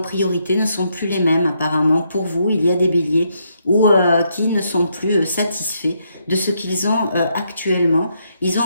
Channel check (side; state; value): both; inverted; correlation -0.76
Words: ne sont plus les mêmes, apparemment. Pour vous, il y a des béliers qui ne sont plus satisfaits de ce qu'ils ont actuellement. Ils ont